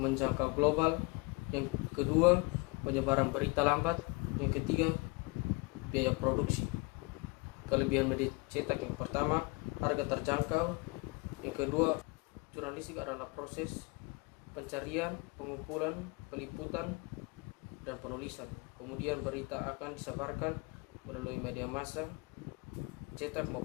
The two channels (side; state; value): right; quieter; 27.6 dB